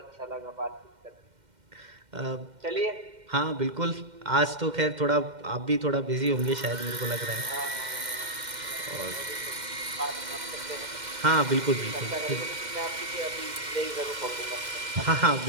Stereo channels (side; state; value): left; late; 2.1 ms